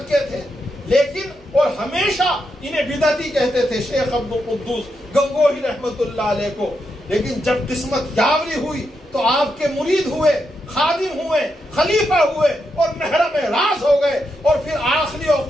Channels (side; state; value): both; normal; correlation 0.83